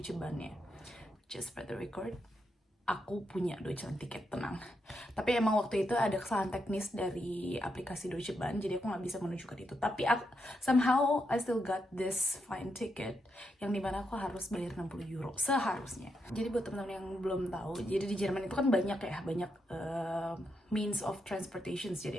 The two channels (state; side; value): normal; both; correlation 0.82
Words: Bahn-nya. Just for the record, aku punya Deutschland tiket, tenang. Tapi emang waktu itu ada kesalahan teknis dari aplikasi Deutsche Bahn, jadi aku nggak bisa menunjukkan itu. Tapi somehow I still got this fine ticket, yang dimana aku harus bayar 60 euro seharusnya. Jadi buat teman-teman yang belum tahu, jadi di Jerman itu kan banyak means of transportation.